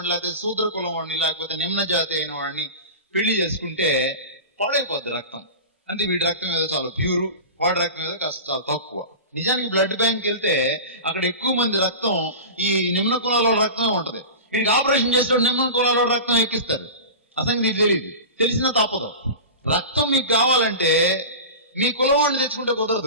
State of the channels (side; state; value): both; inverted; correlation -0.31